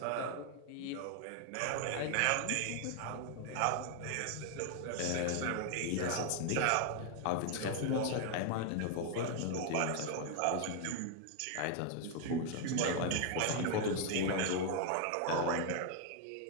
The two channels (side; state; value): both; different; correlation 0.00